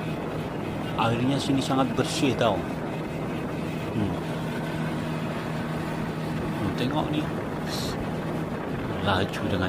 airnya sini sangat bersih tau. Tengok nih, laju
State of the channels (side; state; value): both; identical; correlation 1.00